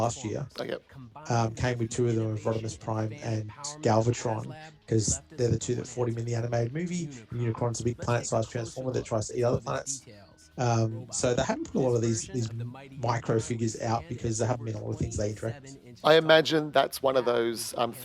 year. Came with 2 of them, of Rodimus Prime and Galvatron, because they're the 2 that fought him in the animated movie. And Unicron's a big planet-sized Transformer that tries to eat other planets. So they haven't put a lot of these micro figures out because there haven't been a lot of things they interact with. I imagine that's one of those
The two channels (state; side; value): identical; both; correlation 1.00